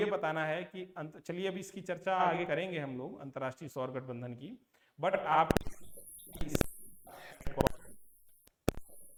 बताना है कि चलिए अभी इसकी चर्चा आगे करेंगे हम लोग अंतरराष्ट्रीय सौर गठबंधन की, बट आप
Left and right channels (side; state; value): both; identical; correlation 1.00